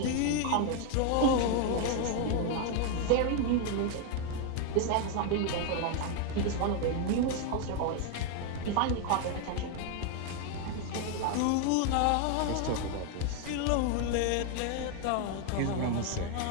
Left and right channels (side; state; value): both; different; correlation 0.01